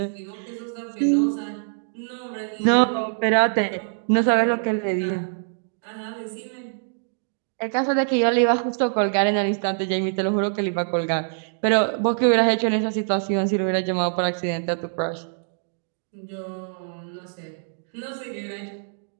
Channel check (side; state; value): left; silent; digital silence